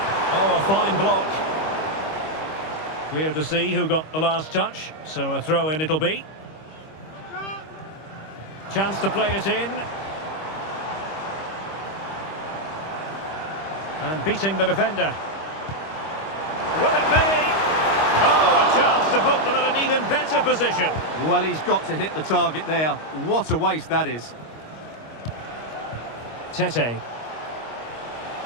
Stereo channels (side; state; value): right; late; 25 ms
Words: Oh, a fine block. Clear to see who got the last touch. So a throw-in it'll be. Chance to play it in. And beating the defender. Will it be? Oh, a chance to put them in an even better position. Well, he's got to hit the target there. What a waste that is. Tete.